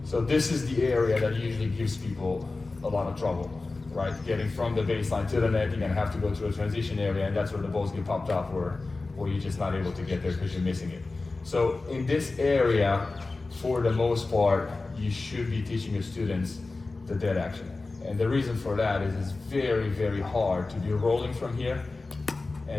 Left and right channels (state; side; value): quieter; right; 3.5 dB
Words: So this is the area that usually gives people a lot of trouble, right? Getting from the baseline to the net, you're gonna have to go through a transition area, and that's where the balls get popped up, or you're just not able to get there because you're missing it. So in this area, for the most part, you should be teaching your students the dead action. And the reason for that is it's very, very hard to be rolling from here